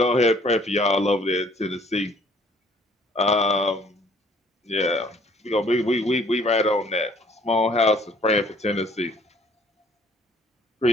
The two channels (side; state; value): both; normal; correlation 0.59